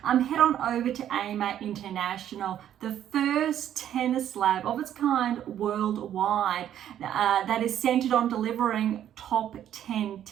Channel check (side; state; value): left; quieter; 10.7 dB